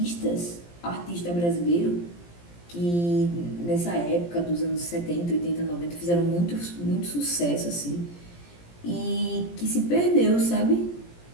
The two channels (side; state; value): right; late; 17 ms